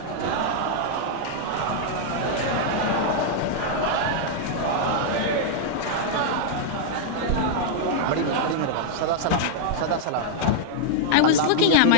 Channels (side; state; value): both; different; correlation -0.01